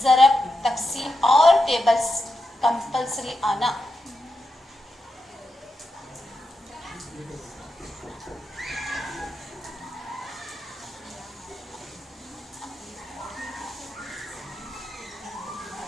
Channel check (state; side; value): normal; both; correlation 0.87